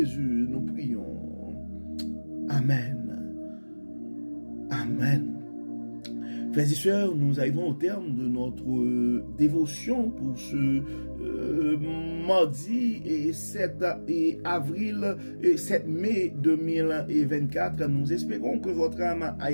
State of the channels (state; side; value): inverted; both; correlation -1.00